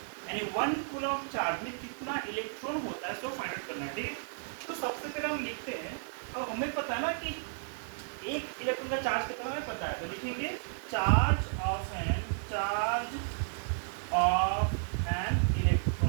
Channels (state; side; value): silent; left; 56 dB below the other